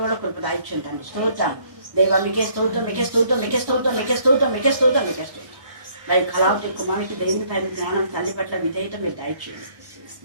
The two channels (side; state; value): left; late; 1.2 ms